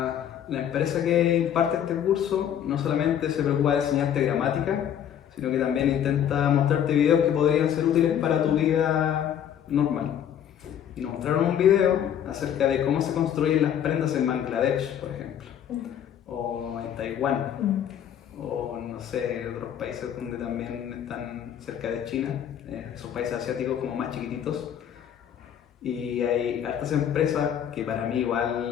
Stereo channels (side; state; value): right; quieter; 9.6 dB